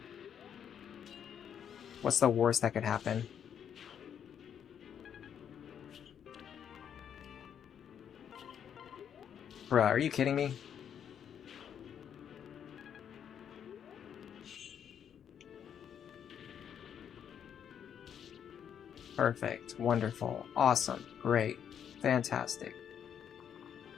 what's the worst that could happen? Bruh, are you kidding me? Perfect. Wonderful. Awesome. Great. Fantastic.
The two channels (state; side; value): quieter; right; 8.6 dB